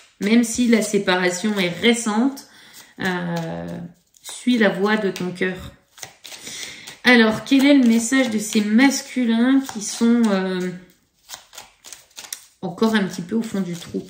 Même si la séparation est récente, suis la voie de ton cœur. Alors, quel est le message de ces masculins qui sont encore un petit peu au fond du trou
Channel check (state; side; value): identical; both; correlation 1.00